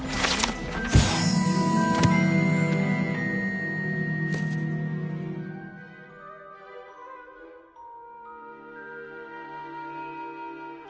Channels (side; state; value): both; identical; correlation 1.00